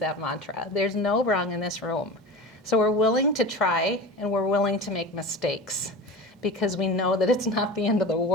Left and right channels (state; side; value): normal; both; correlation 0.31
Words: mantra. There's no wrong in this room. So we're willing to try and we're willing to make mistakes because we know that it's not the end of the